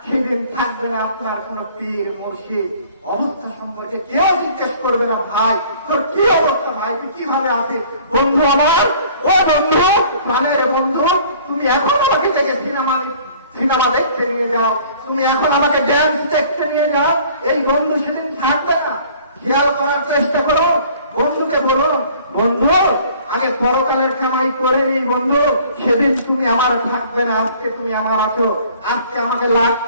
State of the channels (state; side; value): inverted; both; correlation -0.53